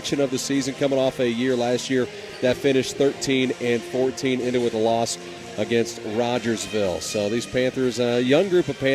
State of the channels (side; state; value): both; identical; correlation 1.00